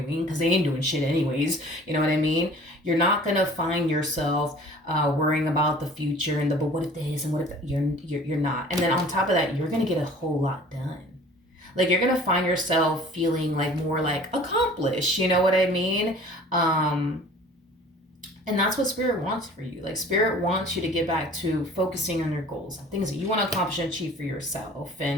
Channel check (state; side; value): normal; both; correlation 0.47